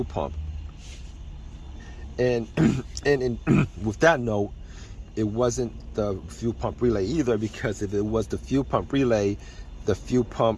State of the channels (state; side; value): identical; both; correlation 1.00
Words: pump. And with that note, it wasn't the fuel pump relay either, because if it was the fuel pump relay, the fuel